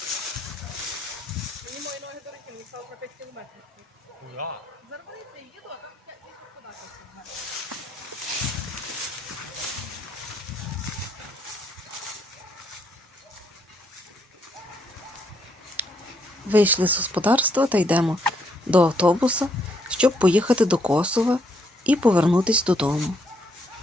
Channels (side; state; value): both; normal; correlation 0.73